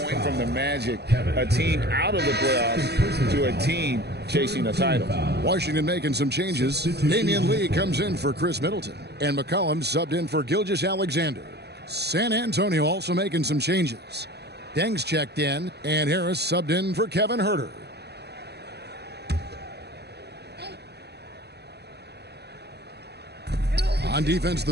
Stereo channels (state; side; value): late; left; 0.48 ms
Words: from the Magic, a team out of the playoffs, to a team chasing a title. Washington making some changes. Damian Lee comes in for Chris Middleton, and McCollum subbed in for Gilgeous-Alexander. San Antonio also making some changes. Deng's checked in, and Harris subbed in for Kevin Huerter. On defense,